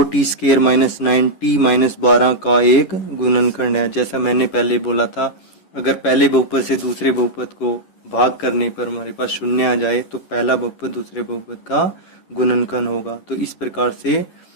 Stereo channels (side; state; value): right; late; 11 ms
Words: minus 9t minus 12 का एक गुणनखंड है। जैसा मैंने पहले बोला था, अगर पहले बहुपद से दूसरे बहुपद को भाग करने पर हमारे पास 0 आ जाए तो पहला बहुपद दूसरे बहुपद का गुणनखंड होगा। तो इस प्रकार से